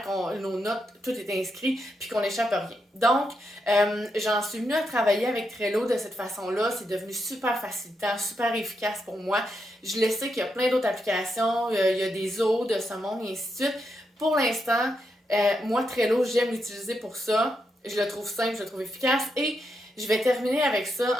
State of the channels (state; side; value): normal; both; correlation 0.83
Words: que nos notes, tout est inscrit, puis qu'on n'échappe à rien. Donc, j'en suis venue à travailler avec Trello de cette façon-là. C'est devenu super facilitant, super efficace pour moi. Je le sais qu'il y a plein d'autres applications, il y a des autres de ce monde et ainsi de suite. Pour l'instant, moi, Trello, j'aime l'utiliser pour ça. Je le trouve simple, je le trouve efficace. Et je vais terminer avec